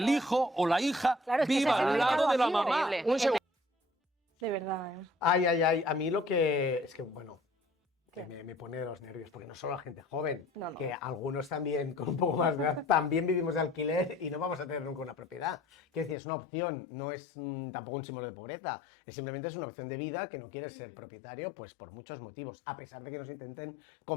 hijo o la hija Claro, es que ese viva es el al lado mercado de la libre. mamá. Increíble. Un segundo. De verdad, ¿eh? Ay, a mí lo que... Es que, bueno, que me pone de los nervios, porque no solo la gente joven, No, no. que algunos también, con un poco más de edad, también vivimos de alquiler y no vamos a tener nunca una propiedad. Quiero decir, es una opción, no es tampoco un símbolo de pobreza, simplemente es una opción de vida que no quieres ser propietario, pues por muchos motivos, a pesar de que nos intenten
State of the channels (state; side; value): drops out; right; at 16.2 s